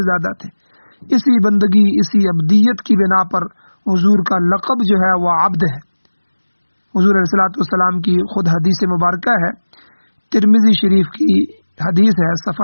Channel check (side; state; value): both; inverted; correlation -1.00